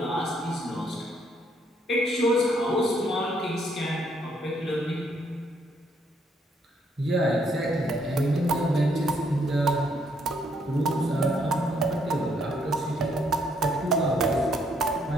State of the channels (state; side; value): normal; both; correlation 0.70